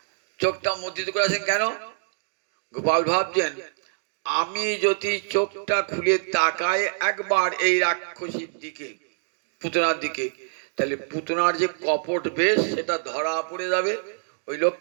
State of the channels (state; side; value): silent; left; 61 dB below the other